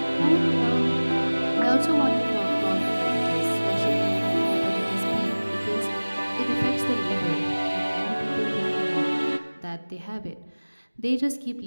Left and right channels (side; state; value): both; inverted; correlation -1.00